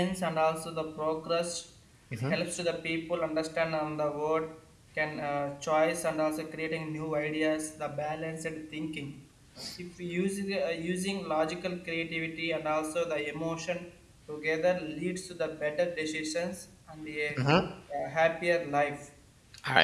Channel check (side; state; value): both; identical; correlation 1.00